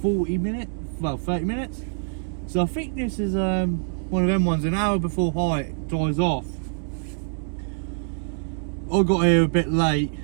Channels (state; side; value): silent; left; 62 dB below the other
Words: 40 minutes, well 30 minutes. So I think this is one of them ones, an hour before high dies off. I got here a bit late